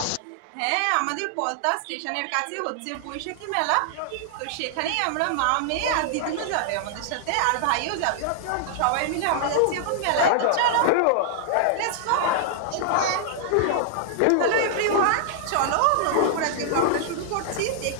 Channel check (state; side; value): different; both; correlation -0.01